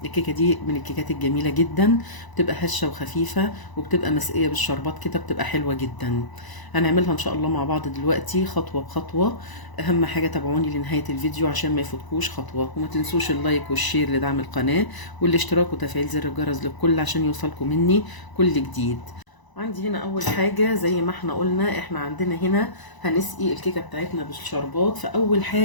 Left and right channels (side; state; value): right; late; 1.0 ms